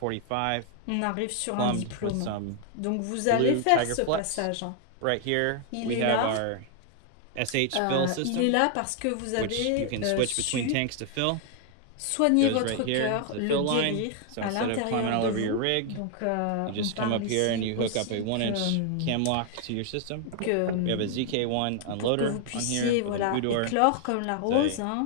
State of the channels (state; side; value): different; both; correlation 0.00